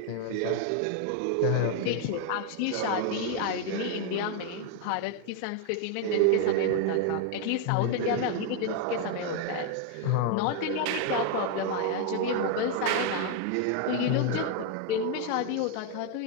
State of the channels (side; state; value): both; different; correlation 0.01